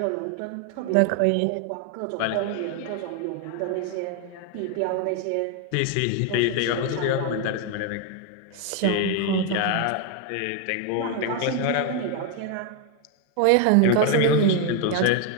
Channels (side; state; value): both; different; correlation 0.01